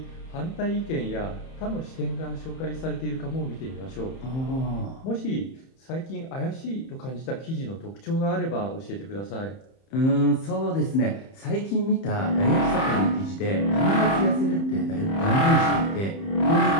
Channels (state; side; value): late; right; 30 ms